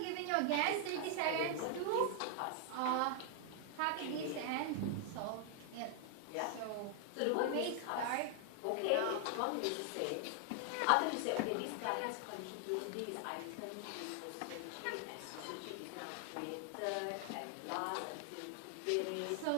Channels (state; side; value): different; both; correlation 0.00